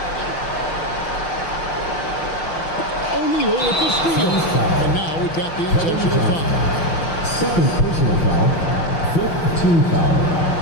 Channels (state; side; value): late; right; 6.3 ms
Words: O'Neal with the steal. And now we've got the intentional foul. 2nd personal foul. 5th team foul.